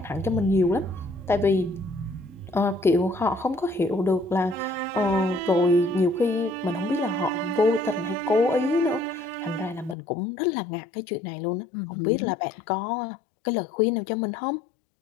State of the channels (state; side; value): drops out; right; at 10.0 s